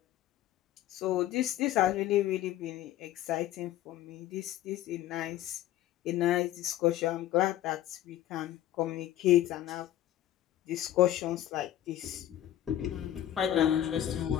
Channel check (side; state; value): right; quieter; 12.8 dB